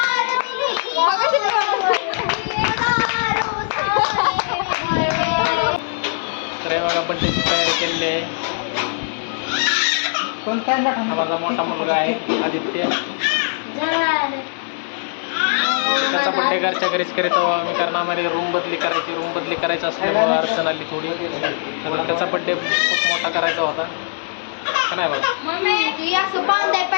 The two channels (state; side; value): silent; right; digital silence